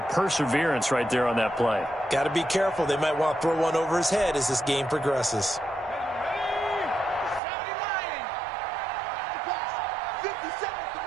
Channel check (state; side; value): drops out; left; at 7.4 s